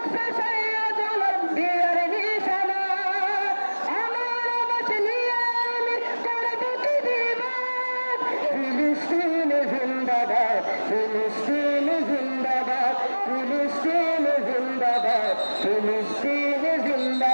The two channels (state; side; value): inverted; both; correlation -1.00